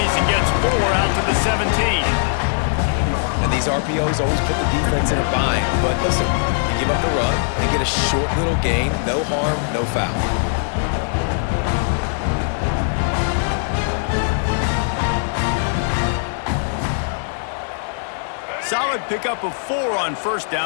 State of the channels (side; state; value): right; silent; 66 dB below the other